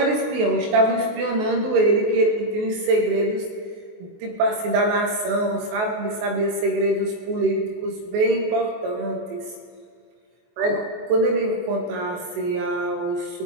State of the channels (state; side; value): late; left; 23 ms